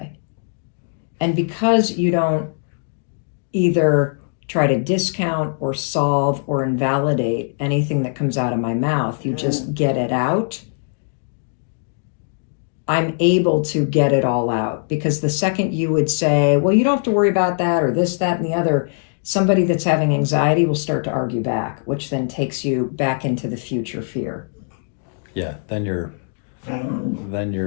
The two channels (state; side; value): silent; right; digital silence